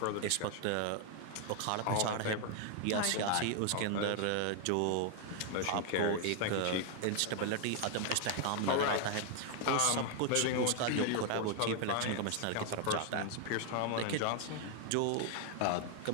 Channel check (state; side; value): different; both; correlation 0.00